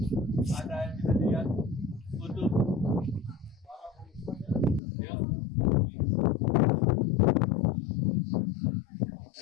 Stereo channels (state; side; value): drops out; right; at 4.8 s